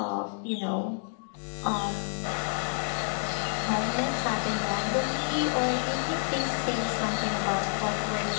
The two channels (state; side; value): silent; right; digital silence